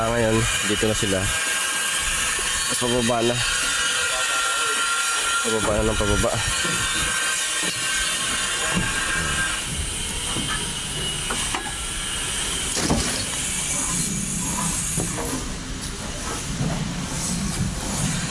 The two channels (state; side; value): identical; both; correlation 1.00